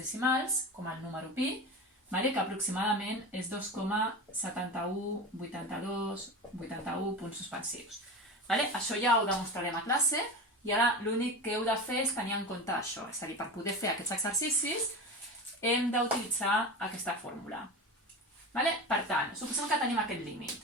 com el número pi, que aproximadament és 2,718281 punts suspensius. Això ja ho demostrarem a classe i ara l'únic que heu de fer és tenir en compte això. És a dir, per poder fer aquests exercicis hem d'utilitzar aquesta fórmula. Per tant, suposem que tenim aquest límit.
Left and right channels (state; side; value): normal; both; correlation 0.27